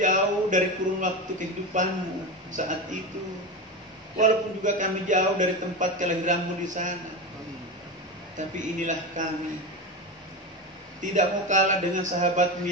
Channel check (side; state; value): both; normal; correlation 0.20